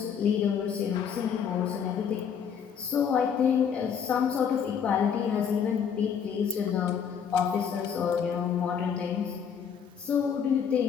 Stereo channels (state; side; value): quieter; right; 7.4 dB